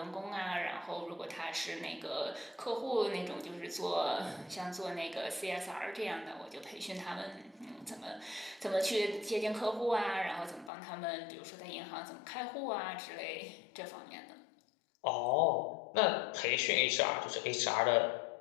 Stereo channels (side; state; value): right; drops out; at 10.7 s